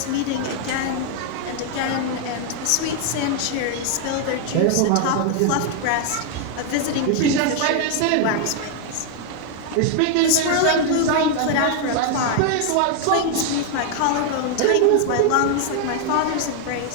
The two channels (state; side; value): different; both; correlation 0.00